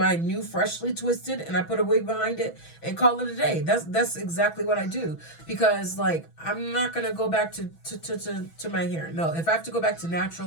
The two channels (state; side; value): late; right; 6.1 ms